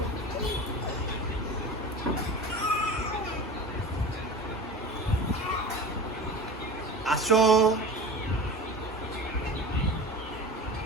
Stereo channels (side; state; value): both; normal; correlation 0.33